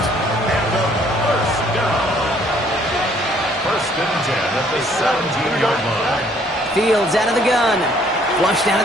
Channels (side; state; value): both; normal; correlation 0.62